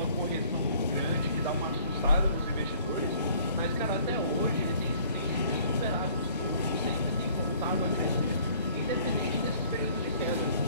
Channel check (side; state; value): both; inverted; correlation -0.55